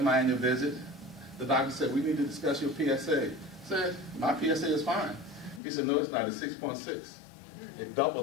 my annual visit, the doctor said, "We need to discuss your PSA." I said, "My PSA is fine." He said, "No, it's not. It's 6.6. It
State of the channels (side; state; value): right; drops out; at 5.6 s